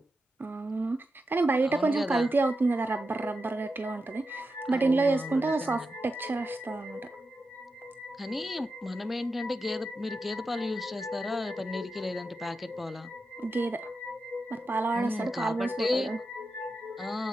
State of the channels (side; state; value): both; normal; correlation 0.89